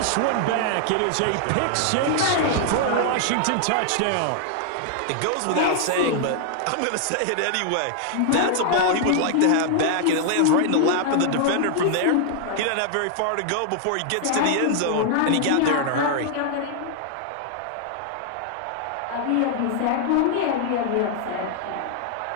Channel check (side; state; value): both; different; correlation 0.00